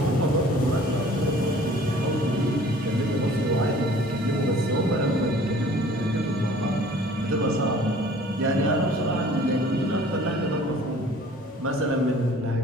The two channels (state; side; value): normal; both; correlation 0.50